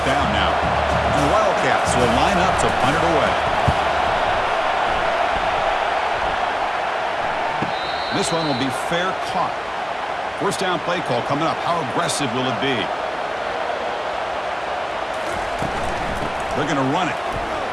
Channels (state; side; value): identical; both; correlation 1.00